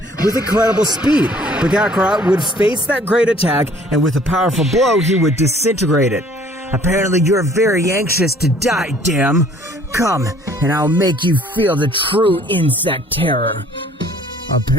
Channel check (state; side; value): normal; both; correlation 0.56